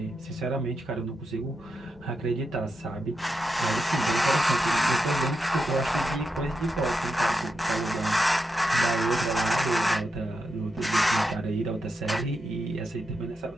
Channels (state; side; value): normal; both; correlation 0.86